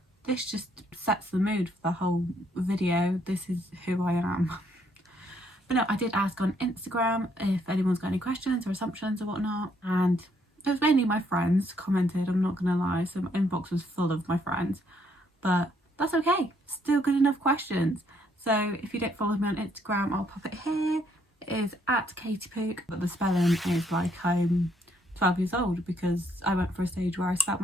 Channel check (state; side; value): normal; both; correlation 0.70